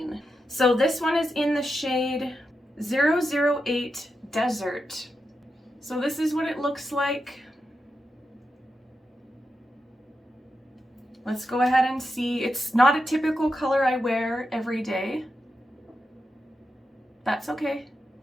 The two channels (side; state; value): both; normal; correlation 0.87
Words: So this one is in the shade 008 Desert. So this is what it looks like. Let's go ahead and see. It's not a typical color I wear every day. That's okay.